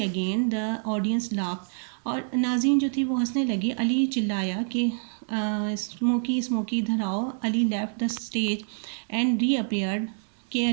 again. The audience laugh. اور ناظرین جو تھی وہ ہنسنے لگی. علی چلایا کہ اسموکی اسموکی ادھر آؤ. Ali left the stage and reappeared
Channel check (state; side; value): silent; left; digital silence